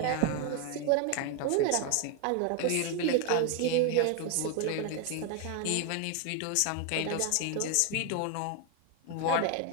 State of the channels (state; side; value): different; both; correlation 0.01